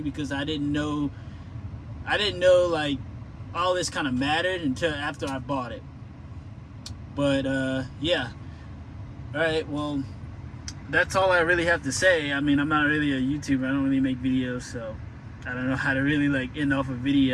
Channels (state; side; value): identical; both; correlation 1.00